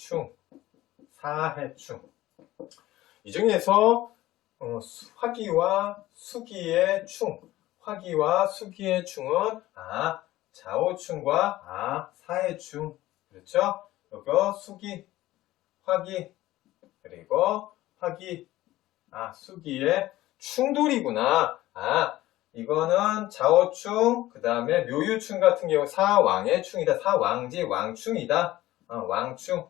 사해충. 이 중에서 화기와 수기의 충, 화기와 수기의 충은 자오충과 사해충. 그렇죠? 여기 수기, 화기, 그리고 화기, 수기의 충돌이구나. 이거는 자오충, 그 다음에 묘유충 같은 경우 사왕의 충이다. 사왕지, 왕충이다. 왕충,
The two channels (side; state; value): right; quieter; 16.2 dB